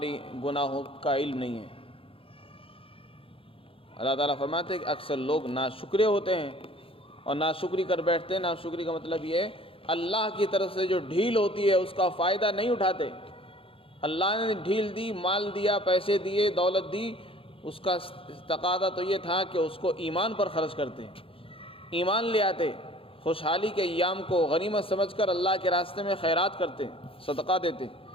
گناہوں کا علم نہیں ہے. اللہ تعالیٰ فرماتے ہیں کہ اکثر لوگ ناشکرے ہوتے ہیں اور ناشکری کر بیٹھتے ہیں. ناشکری کا مطلب یہ ہے اللہ کی طرف سے جو ڈھیل ہوتی ہے اس کا فائدہ نہیں اٹھاتے. اللہ نے ڈھیل دی، مال دیا، پیسے دیے، دولت دی، اس کا تقاضا تو یہ تھا کہ اس کو ایمان پر خرچ کرتے، ایمان لے آتے، خوشحالی کے ایام کو غنیمت سمجھ کر اللہ کے راستے میں خیرات کرتے، صدقہ دیتے.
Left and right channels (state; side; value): late; right; 0.27 ms